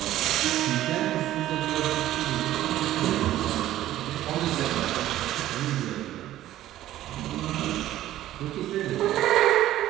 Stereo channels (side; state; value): left; quieter; 13.8 dB